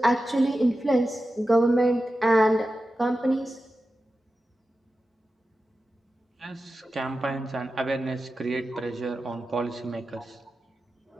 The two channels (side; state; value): both; normal; correlation 0.92